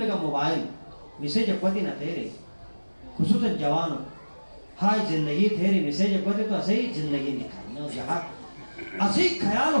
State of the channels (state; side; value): inverted; both; correlation -1.00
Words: کا موبائل میسیج اپوتی نہ تیرے خصوصا جوانوں ہائی زندگی تیری میسیج اپوتی تو اسے زندگی نکھائینا جہاں اسے خیال